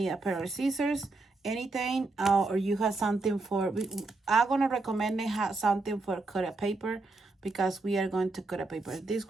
a pair of scissors, anything, or you have something for, I'm gonna recommend they have something for cutting paper, because we are going to cut a paper. This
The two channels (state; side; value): quieter; left; 3.4 dB